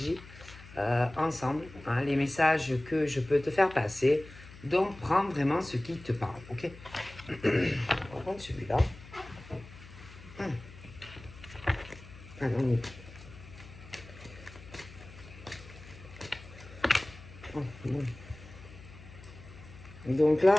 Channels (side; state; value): left; noise; hum, 18 dB below the sound